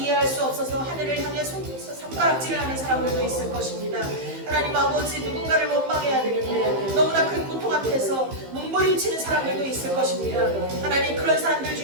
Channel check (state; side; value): late; left; 15 ms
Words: 수 없어서 하늘을 향해 손가락질을 하는 사람들도 있을 것입니다. 하나님 아버지, 누군가를 원망해야 되는데 너무나 큰 고통 앞에서 몸부림치는 사람들도 있을 것입니다. 하나님, 그런 사람들